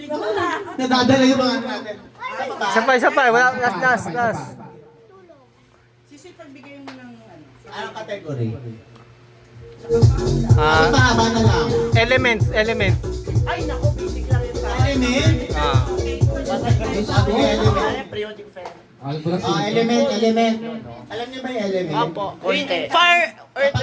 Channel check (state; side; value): identical; both; correlation 1.00